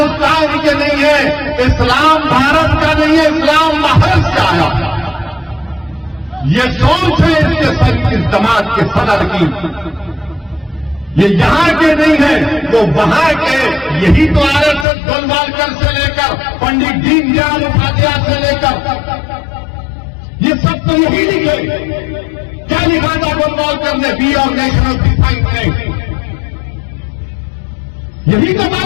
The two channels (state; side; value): drops out; right; at 14.9 s